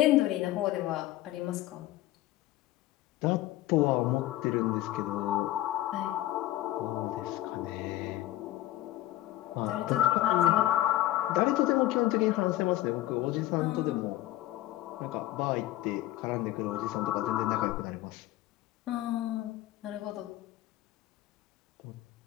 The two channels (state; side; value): quieter; right; 15.5 dB